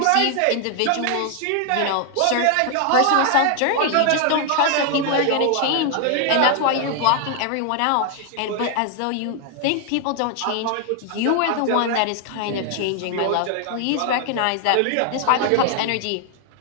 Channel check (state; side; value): different; both; correlation 0.00